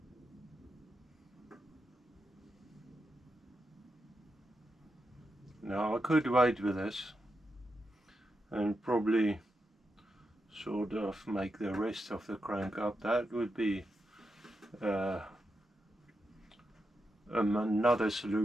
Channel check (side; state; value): both; normal; correlation 0.86